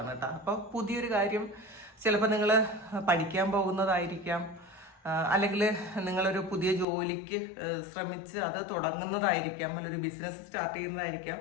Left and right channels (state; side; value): drops out; right; at 6.9 s